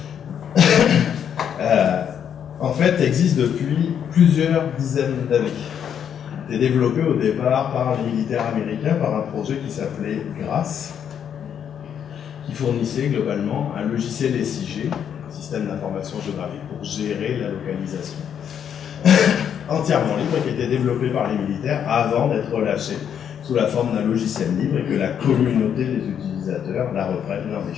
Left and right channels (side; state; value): right; quieter; 8.6 dB